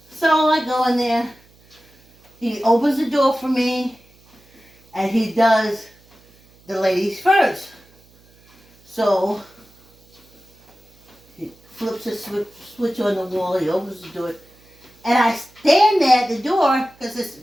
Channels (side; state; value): right; noise; hum, 30 dB below the sound